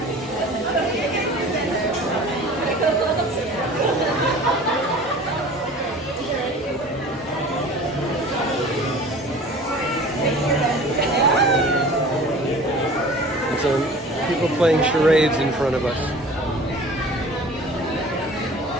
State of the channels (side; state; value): both; normal; correlation 0.43